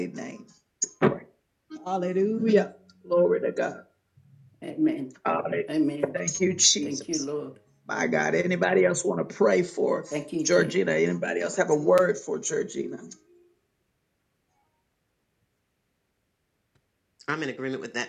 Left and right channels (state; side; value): identical; both; correlation 1.00